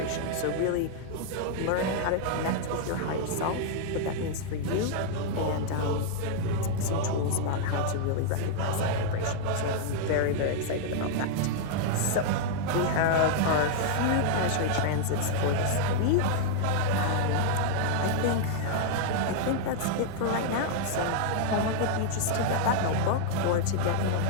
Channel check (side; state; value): both; different; correlation -0.01